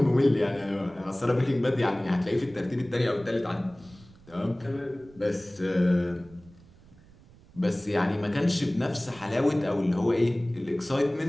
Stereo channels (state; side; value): noise; right; rumble, 25 dB below the sound